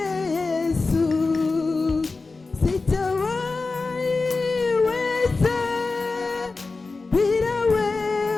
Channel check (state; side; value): quieter; right; 3.9 dB